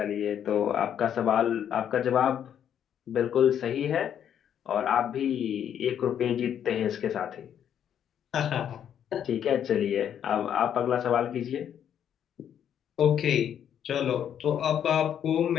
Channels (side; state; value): right; quieter; 9.3 dB